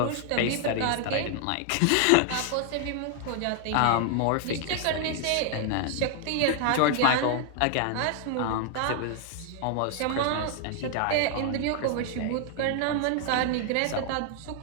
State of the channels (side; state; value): both; different; correlation 0.00